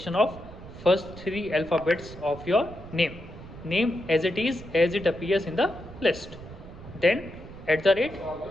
of first 3 alphabets of your name as it appears in the list. Then @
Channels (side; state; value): right; noise; rumble, 15 dB below the sound